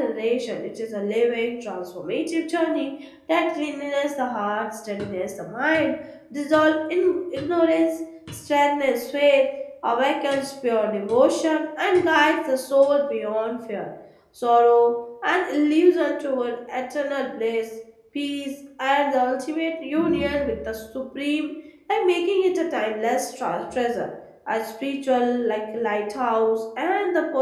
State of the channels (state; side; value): identical; both; correlation 1.00